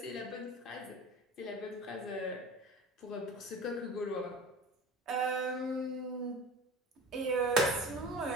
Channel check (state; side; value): normal; both; correlation 0.36